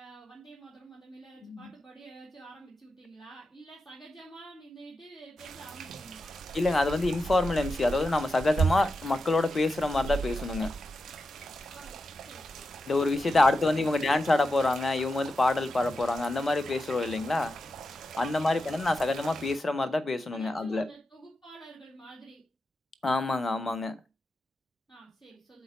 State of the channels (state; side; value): normal; both; correlation 0.89